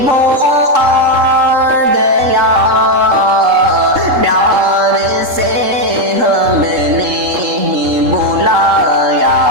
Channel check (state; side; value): late; left; 3.7 ms